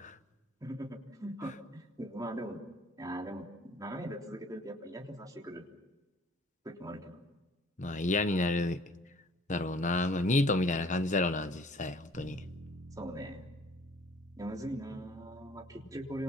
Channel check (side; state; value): both; normal; correlation 0.55